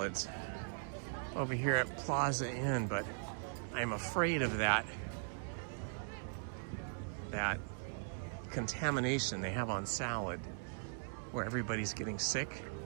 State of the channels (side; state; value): left; silent; digital silence